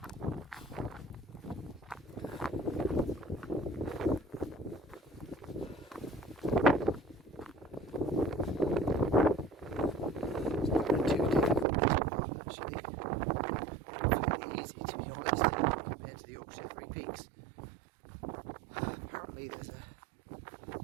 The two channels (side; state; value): left; drops out; at 11.7 s